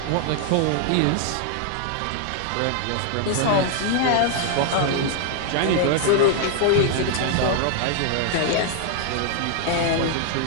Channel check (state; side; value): different; both; correlation 0.00